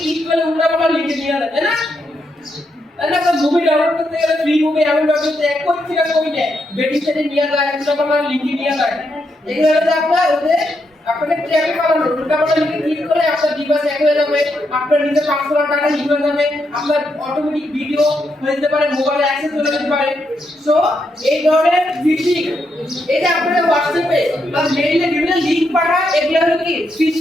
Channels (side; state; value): both; normal; correlation 0.81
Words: ক্লিক করলে উল্টাপাল্টা লিংকে নিয়ে যাবে, তাই না? তাহলে একটা মুভি ডাউনলোড করতে গেলে ফ্রি মুভি এমন করতে এক কোটি টাকা কমে যায়, বেটিং সেটে নিয়ে যায়, উল্টাপাল্টা লিংকে নিয়ে যায়। এগুলো হচ্ছে আপনাদের ট্র্যাকে পালানো, উল্টাপাল্টা লিংকে ক্লিক করে আপনার ডিভাইস হ্যাক হয়ে যাবে, আপনার নিজের পার্সোনাল ডাটা লিক হয়ে যাবে, আপনার অটোমেটিক ভিডিও হয়ে যেতে পারে, মোবাইলে অ্যাক্সেস হয়ে যেতে পারে। সো এই ধরনের ফিশিং, এই যে আপনাদের হোয়াটসঅ্যাপে বা মেইলে বিভিন্ন লিংক পাঠায়, এগুলো হলো কি